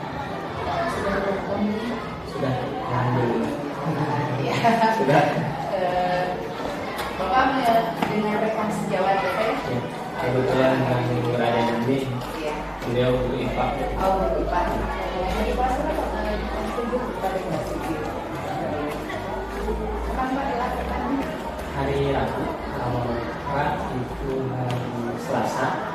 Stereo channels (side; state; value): both; identical; correlation 1.00